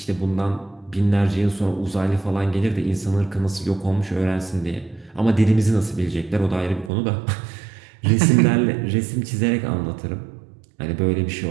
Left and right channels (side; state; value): left; drops out; at 6.9 s